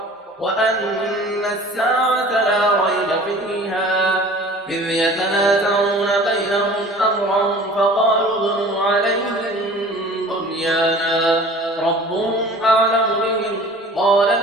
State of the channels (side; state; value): both; normal; correlation 0.45